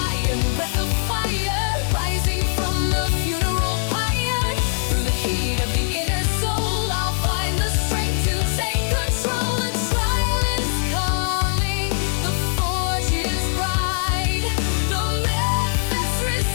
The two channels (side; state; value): right; silent; 63 dB below the other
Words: breath of fire, rising from the funeral pyre. Through the heat of the inner soul, I'll find the strength to take control. A trial is calling, the forge is bright, the methods